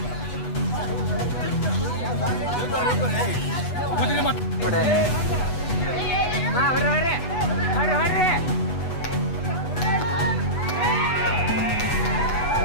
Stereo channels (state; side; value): late; right; 8.1 ms